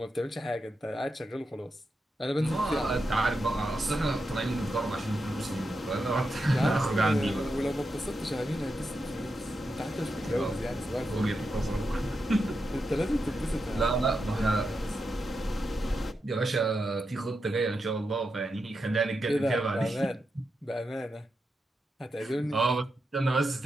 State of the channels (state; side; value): normal; both; correlation 0.87